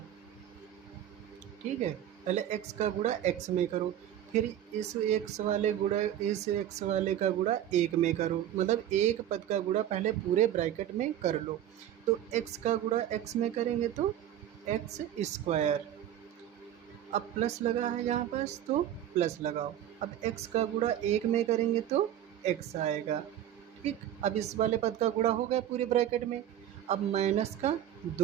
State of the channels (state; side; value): quieter; left; 11.3 dB